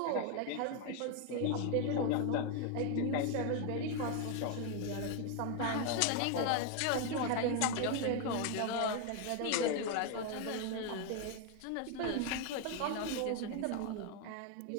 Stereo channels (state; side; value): different; both; correlation 0.01